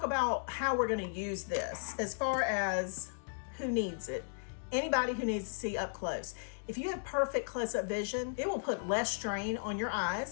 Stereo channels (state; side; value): silent; right; digital silence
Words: about how we're going to use this as far as who needs it. Anybody who needs to see up close. If you have perfect close-up vision, it will put less strain on your